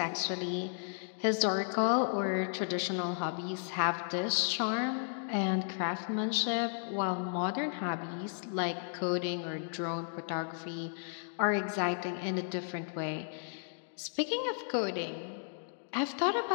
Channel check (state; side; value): silent; right; digital silence